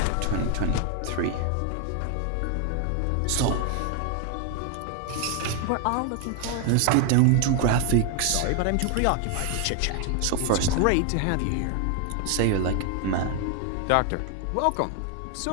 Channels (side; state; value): both; different; correlation 0.00